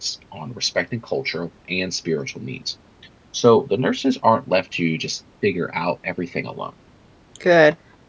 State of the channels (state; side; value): identical; both; correlation 1.00